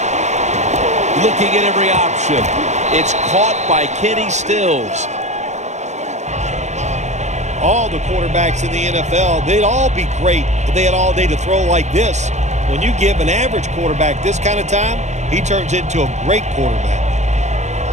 Looking at every option. It's caught by Kenny Stills. All the quarterbacks in the NFL, they'd all be great if they had all day to throw like this. When you give an average quarterback this kind of time, he turns into a great quarterback.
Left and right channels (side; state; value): left; late; 0.33 ms